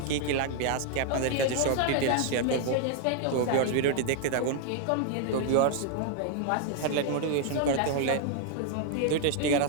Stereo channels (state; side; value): different; both; correlation 0.00